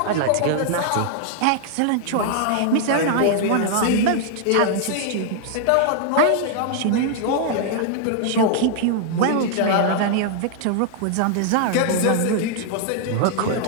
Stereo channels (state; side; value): different; both; correlation -0.01